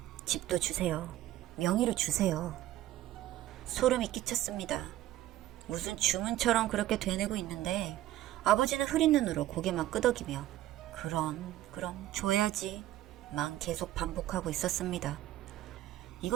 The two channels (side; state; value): left; quieter; 14.4 dB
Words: 집도 주세요. 명의로 주세요. 소름이 끼쳤습니다. 무슨 주문처럼 그렇게 되뇌고 있는데 아버지는 흐린 눈으로 고개만 끄덕이며 그럼 줘야지 만 계속 반복하고 있었습니다.